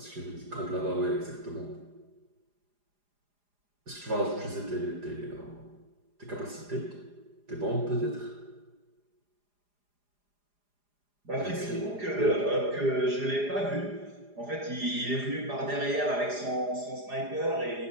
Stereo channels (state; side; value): late; left; 4.9 ms